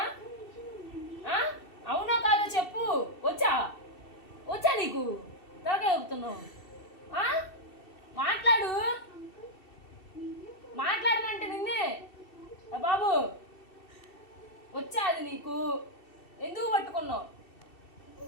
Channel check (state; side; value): late; right; 2.7 ms